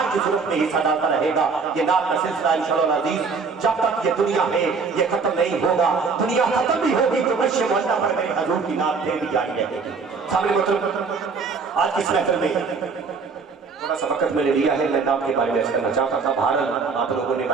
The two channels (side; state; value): left; quieter; 4.9 dB